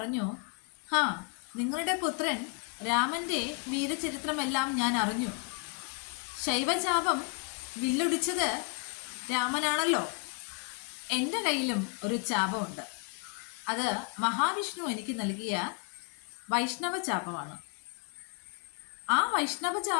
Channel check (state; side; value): quieter; right; 33.4 dB